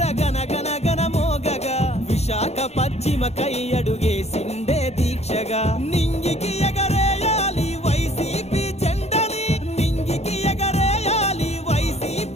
గనగన గన మోగగా విశాఖ పశ్చిమకై అడుగేసిండే దీక్షగా నింగికి ఎగరేయాలి వైసీపీ జెండని నింగికి ఎగరేయాలి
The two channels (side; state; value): right; late; 0.31 ms